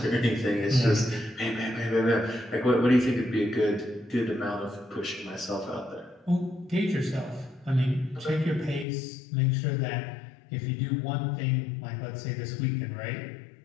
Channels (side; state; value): right; drops out; at 8.8 s